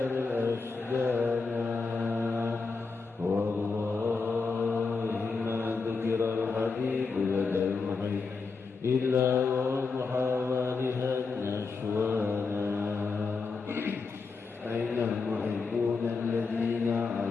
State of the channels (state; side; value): quieter; right; 4.6 dB